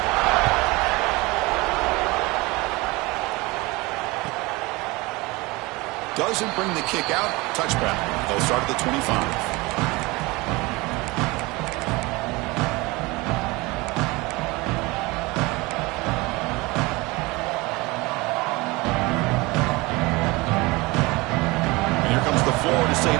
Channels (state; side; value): quieter; left; 23.3 dB